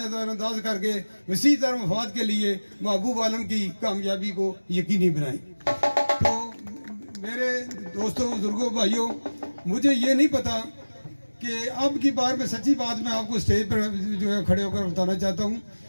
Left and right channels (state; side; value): inverted; both; correlation -1.00